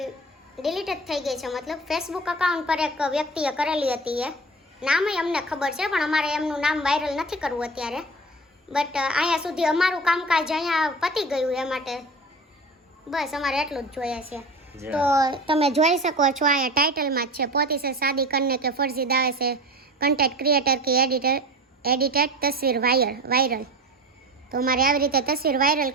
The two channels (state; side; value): normal; both; correlation 0.34